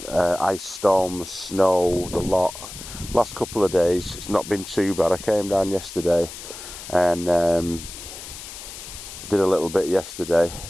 ice storms, snow, the lot. Last couple of days it's not been too bad. I came down yesterday and did a little bit yesterday.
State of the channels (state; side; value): noise; left; hiss, 12 dB below the sound